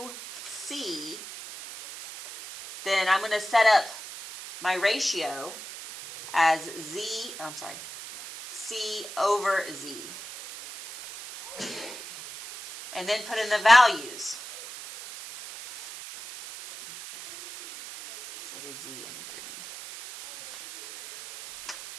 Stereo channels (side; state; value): right; noise; hiss, 12 dB below the sound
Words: C, then I'm going to set up my ratio as C over Z. And then put in the values. So I did Z in green.